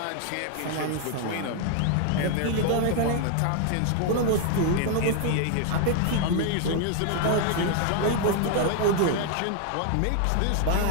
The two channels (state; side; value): different; both; correlation 0.00